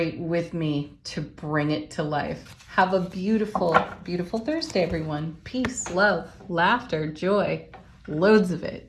with me to bring it to life. Have a beautiful, beautiful Thursday, everyone. Peace, love, laughter, joy, loads of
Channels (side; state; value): both; identical; correlation 1.00